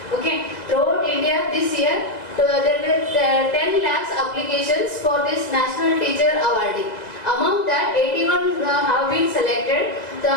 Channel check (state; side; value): late; right; 1.8 ms